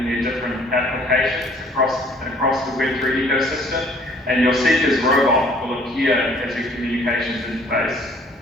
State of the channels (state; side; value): normal; both; correlation 0.57